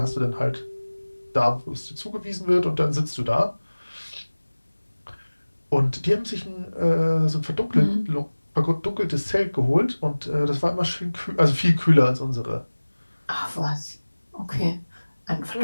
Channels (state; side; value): inverted; both; correlation -1.00